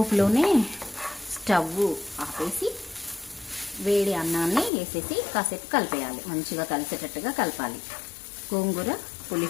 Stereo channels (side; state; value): right; drops out; at 4.7 s